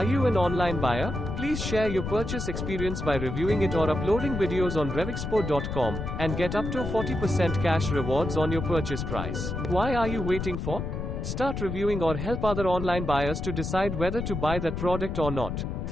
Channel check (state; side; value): noise; left; rumble, 4 dB below the sound